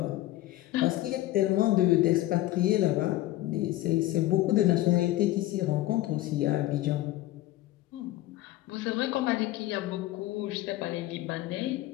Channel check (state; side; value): quieter; right; 15.9 dB